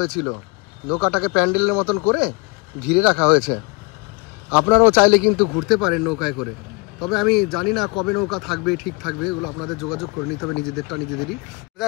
নৌকাটাকে প্যান্ডেলের মতন করে ঘিরে রাখা হয়েছে। আপনারাও চাইলে কিন্তু ঘুরতে পারেন নৌকায় করে। তবে আমি জানি না কবে নৌকা থাকবে, ঠিক থাকবে, এগুলো আপনাদের যোগাযোগ করে নিতে হবে, নিজেদেরই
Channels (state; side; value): quieter; right; 29.5 dB